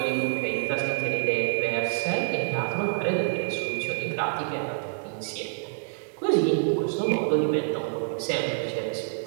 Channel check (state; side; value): silent; left; 60 dB below the other